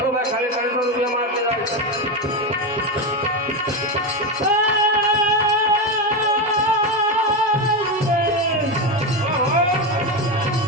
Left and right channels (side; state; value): both; normal; correlation 0.13